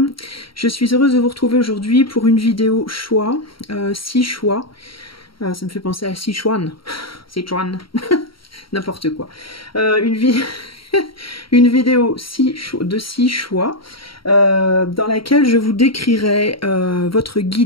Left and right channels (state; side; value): late; right; 0.74 ms